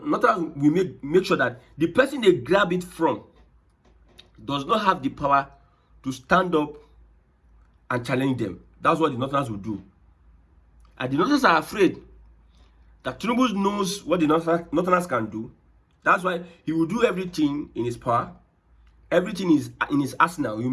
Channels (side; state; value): both; identical; correlation 1.00